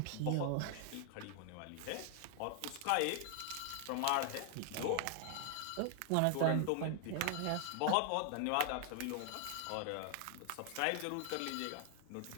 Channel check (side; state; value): both; different; correlation 0.00